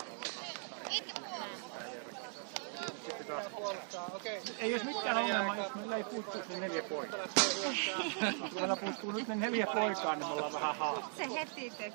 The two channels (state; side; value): silent; left; 52 dB below the other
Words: taas se sarja, ei siinä mitään järkeä. Sitten taas ei olisi mikään ongelma, jos meillä ei puuttuisi ne 4 poikaa. Kun meillä puuttuu nyt ne 4 poikaa, niin me ollaan vähän haasteella. Se heti